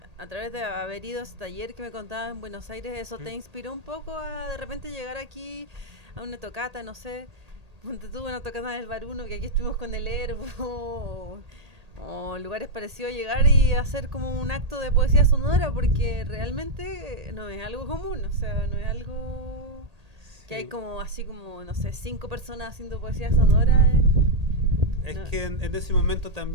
a través de haber ido a ese taller que me contabas en Buenos Aires, ¿eso te inspiró un poco a de repente llegar aquí a una tocata, no sé? Ponte tú una tocata del Baruno, que aquí estuvimos con el Herbo, o lugares parecidos, llegar y hacer como un acto de poesía sonora, porque realmente no es algo común, o sea, no es algo que hay Sí. como así como, no sé, 5 personas haciendo poesía sonora. Es No. que en ese momento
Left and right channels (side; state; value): left; late; 1.8 ms